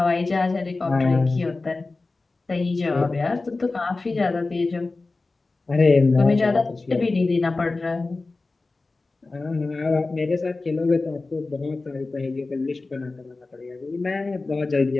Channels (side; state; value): right; quieter; 3.5 dB